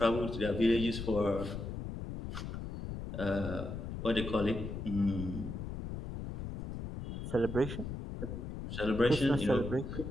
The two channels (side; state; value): left; noise; rumble, 6 dB below the sound